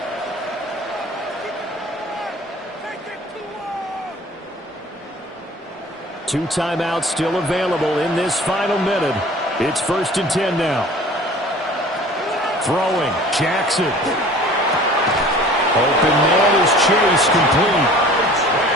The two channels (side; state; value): both; normal; correlation 0.46